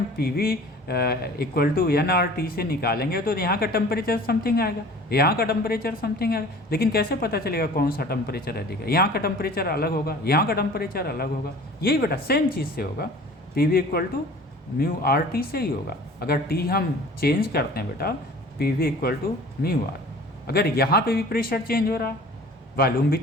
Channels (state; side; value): normal; both; correlation 0.45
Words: PV इक्वल टू nRT से निकालेंगे तो यहाँ का टेम्परेचर समथिंग आएगा, यहाँ का टेम्परेचर समथिंग आएगा, लेकिन कैसे पता चलेगा कौन सा टेम्परेचर अधिक है? यहाँ का टेम्परेचर अलग होगा, यहाँ का टेम्परेचर अलग होगा। यही बेटा सेम चीज़ से होगा, PV equal to mu RT से ही होगा। अगर T हम चेंज करते हैं बेटा, PV equal to mu R। अगर यहाँ पे भी प्रेशर चेंज हो रहा, वॉल्यूम भी